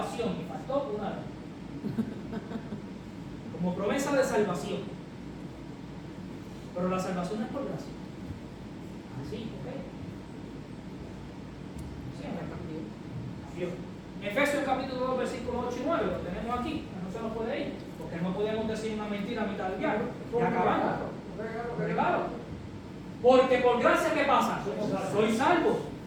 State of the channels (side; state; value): both; identical; correlation 1.00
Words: Y faltó una vez. Como promesa de salvación. Pero la salvación no es por gracia. Así, ¿ok? Sí, Dios. Efesios capítulo 2, versículos 8 y 9, lo tenemos aquí, no se nos puede ir, porque no podemos decir una mentira a mitad del diálogo. Y acabamos. Regalo. Porque por gracia, ¿qué pasa? Soy salvo.